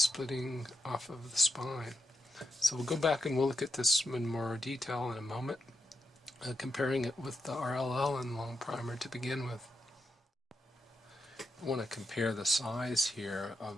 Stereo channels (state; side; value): normal; both; correlation 0.84